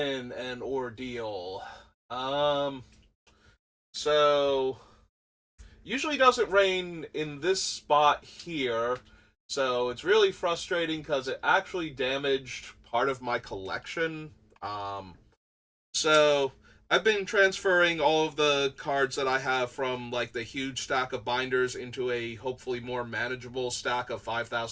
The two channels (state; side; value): identical; both; correlation 1.00